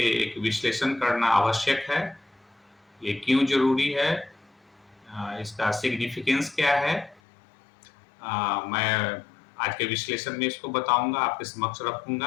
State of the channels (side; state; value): right; drops out; at 7.2 s